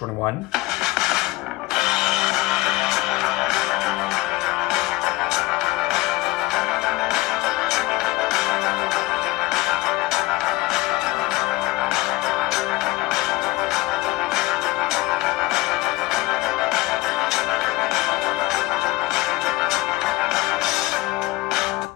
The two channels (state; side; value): quieter; right; 20.3 dB